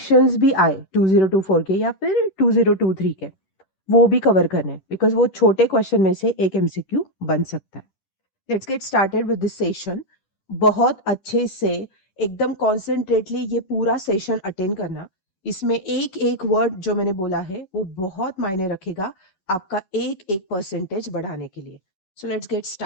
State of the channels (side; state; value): right; late; 10 ms